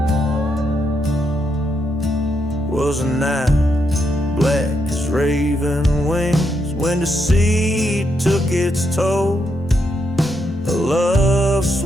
Was a night black as raven wings, when deceit took its toll. A love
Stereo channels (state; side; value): normal; both; correlation 0.80